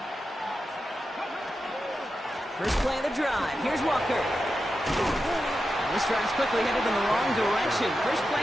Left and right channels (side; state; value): both; normal; correlation 0.90